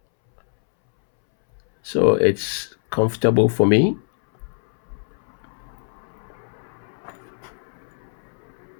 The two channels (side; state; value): right; silent; 63 dB below the other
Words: so it's comfortable for me.